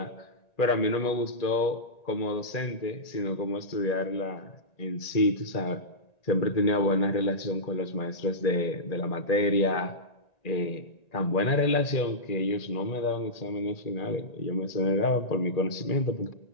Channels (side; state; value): right; late; 1.9 ms